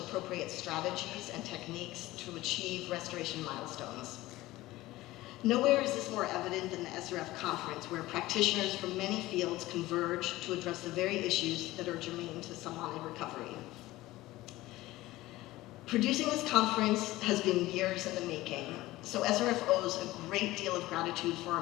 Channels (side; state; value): right; quieter; 17.7 dB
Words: strategies and techniques to achieve restoration milestones. Nowhere is this more evident than the SRF conference, where practitioners from many fields converge to address the very issues that are germane to salmonid recovery. Producing this conference has been years in the making, so SRF owes a great deal of gratitude for our